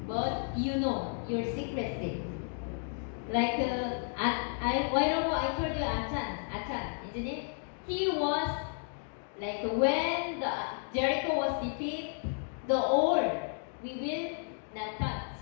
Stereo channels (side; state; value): right; silent; 56 dB below the other